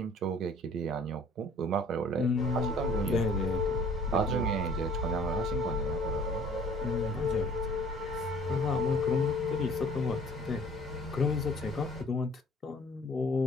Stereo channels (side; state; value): both; normal; correlation 0.53